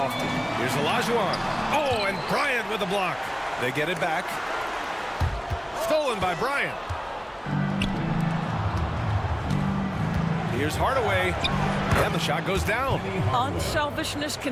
Here's Olajuwon. Oh, and Bryant with the block. They get it back. Stolen by Bryant. Here's Hardaway. And the shot goes down. Unselfishness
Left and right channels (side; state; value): both; identical; correlation 1.00